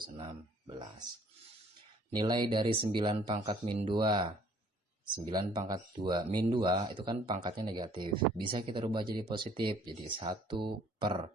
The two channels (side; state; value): both; normal; correlation 0.58